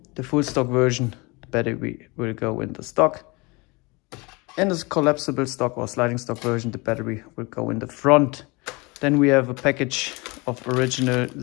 The full stock version, the battery will go in the stock. In this collapsible stock or sliding stock version, the battery will go in the front. Then we have a package of original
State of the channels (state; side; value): quieter; right; 26.2 dB